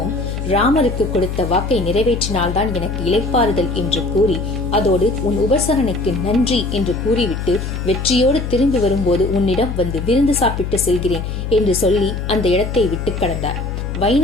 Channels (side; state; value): left; noise; hum, 5 dB below the sound